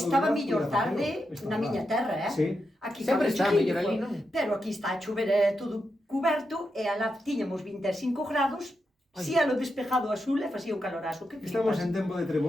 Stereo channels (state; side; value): normal; both; correlation 0.86